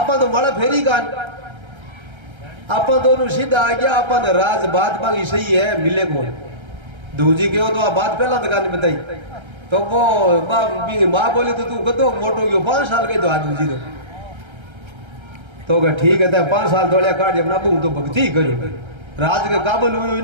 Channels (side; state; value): left; late; 1.3 ms